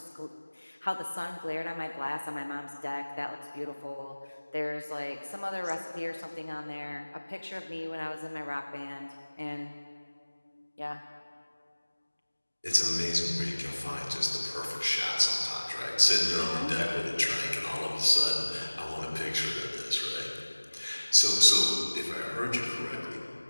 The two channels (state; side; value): inverted; both; correlation -1.00